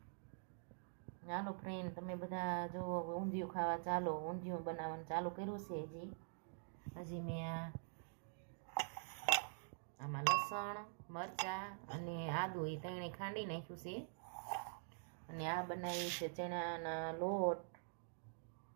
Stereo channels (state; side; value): silent; left; digital silence